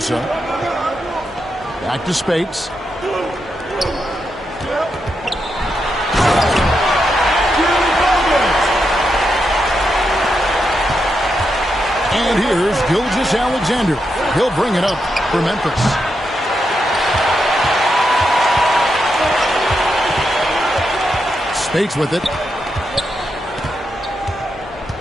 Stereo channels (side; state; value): both; normal; correlation 0.84